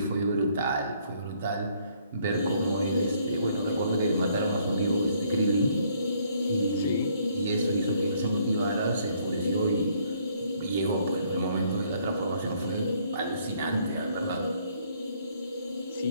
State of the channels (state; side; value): inverted; both; correlation -0.66